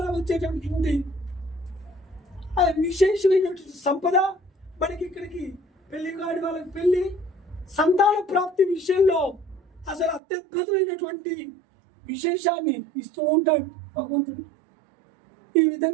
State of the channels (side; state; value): left; drops out; at 10.2 s